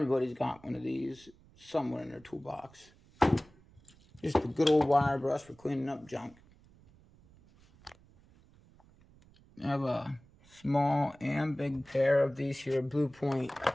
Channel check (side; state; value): right; noise; rumble, 27 dB below the sound